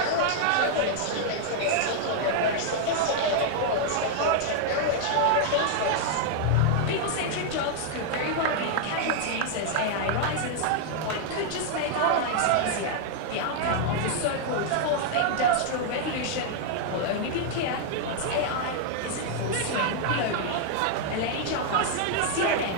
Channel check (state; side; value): different; both; correlation -0.01